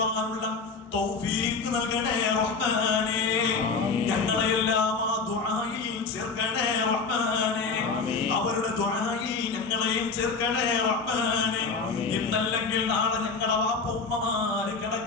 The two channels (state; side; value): quieter; right; 4.5 dB